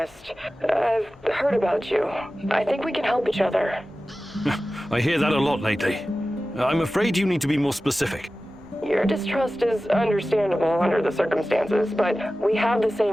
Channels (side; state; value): both; normal; correlation 0.95